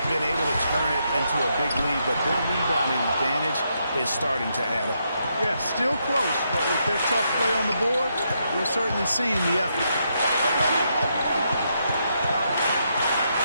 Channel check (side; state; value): both; inverted; correlation -0.79